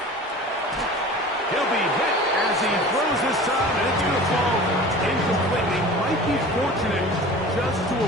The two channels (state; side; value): normal; both; correlation 0.39